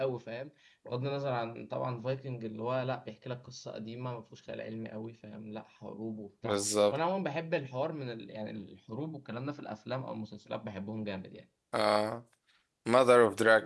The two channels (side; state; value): both; identical; correlation 1.00